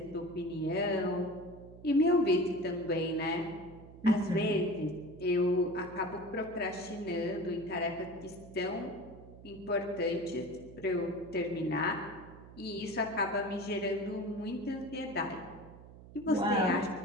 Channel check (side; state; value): right; noise; hum, 18 dB below the sound